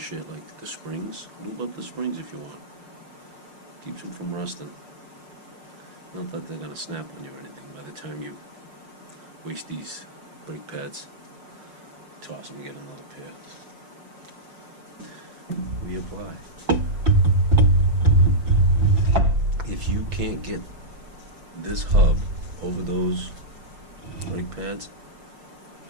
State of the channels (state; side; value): late; left; 6.0 ms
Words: like the springs. Lube up the springs if you want. Keeps them from rusting. Not that they're going to snap on you or anything. By the time you waste these brake pads, toss them and get another pair. Reapply. If you can't get this hub over those brake pads,